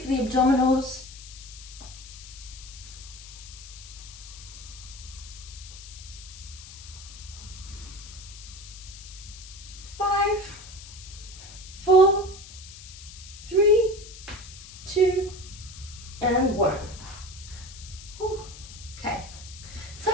for the abdominals. Five, 4, 3, 2, and 1.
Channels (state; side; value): noise; left; hiss, 15 dB below the sound